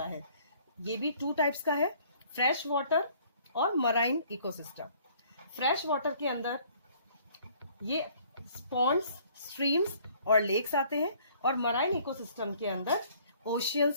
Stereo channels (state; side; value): inverted; both; correlation -0.58